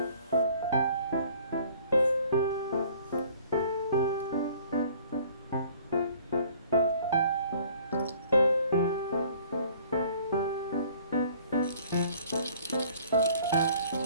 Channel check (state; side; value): inverted; both; correlation -0.54